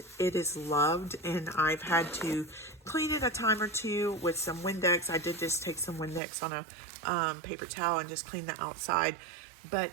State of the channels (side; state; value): left; drops out; at 6.2 s